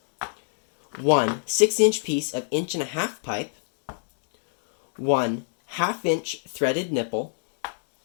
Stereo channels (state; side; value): silent; right; digital silence